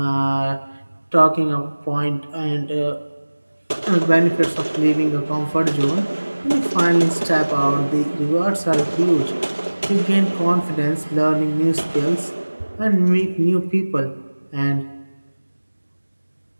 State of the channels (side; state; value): both; inverted; correlation -1.00